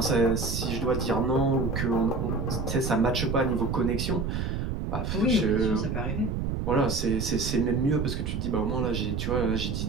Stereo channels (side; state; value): right; noise; rumble, 2 dB below the sound